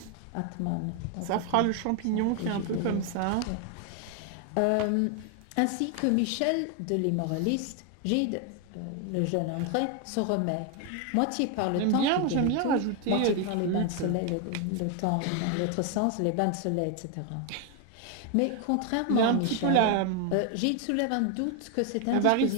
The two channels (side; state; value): both; different; correlation 0.01